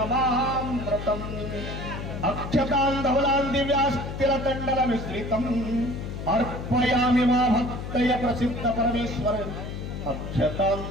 अक्षतान् धवलान् दिव्यास्तिरतण्डलमिश्रितम् अर्पयामि मा भक्तय प्रसिद्ध परमेश्वर अक्षतान्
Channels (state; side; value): noise; left; hum, 7 dB below the sound